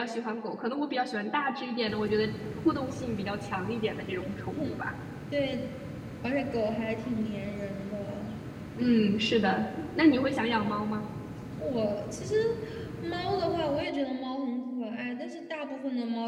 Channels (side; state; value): both; identical; correlation 1.00